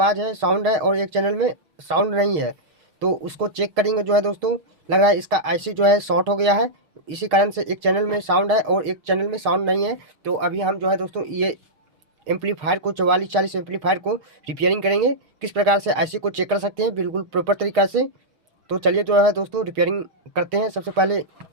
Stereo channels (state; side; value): late; left; 6.5 ms